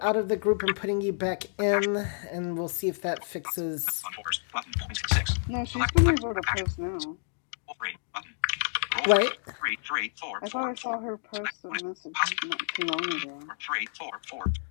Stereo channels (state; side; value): silent; right; digital silence